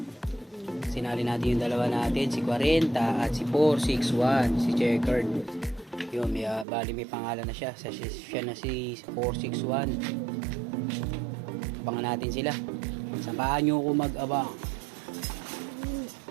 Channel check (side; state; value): left; drops out; at 6.7 s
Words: Sinali natin yung dalawa natin, si 40 at si 461, si Checkered. Yun, bali may pangalan na siya. Siya na si 461. Abangan natin sila. Samahan nyo ako mag-abang.